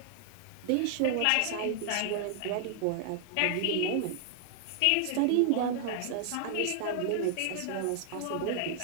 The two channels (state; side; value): different; both; correlation 0.00